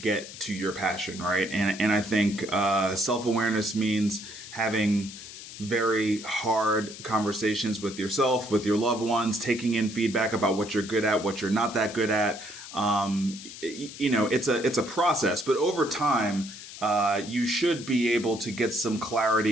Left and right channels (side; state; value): left; noise; hiss, 13 dB below the sound